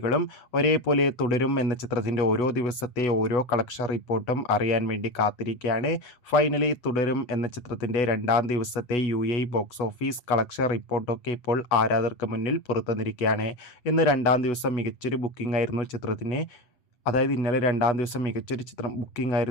ഒരേപോലെ തുടരും എന്ന ചിത്രത്തിൻ്റെ ഓരോ ദിവസത്തെ ഓരോ കളക്ഷൻ റിപ്പോർട്ടും അറിയാൻ വേണ്ടി കാത്തിരിക്കുകയാണ്. ഫൈനലി തുടരും എന്ന ചിത്രത്തിൻ്റെ രണ്ടാം ദിവസത്തെ ബോക്സ് ഓഫീസ് കളക്ഷൻ റിപ്പോർട്ടൊക്കെ ഇപ്പോൾ ആരാധകർക്ക് മുന്നിൽ പുറത്തുവന്നിരിക്കുകയാണ്. ഇന്ന് രണ്ടാം ദിവസം മികച്ചൊരു ബുക്കിംഗ് ആയിരുന്നു ചിത്രത്തിന്. അതായത് ഇന്നലെ രണ്ടാം ദിവസം മികച്ചൊരു ചിത്രം ബുക്കിംഗ്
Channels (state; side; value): late; right; 8.2 ms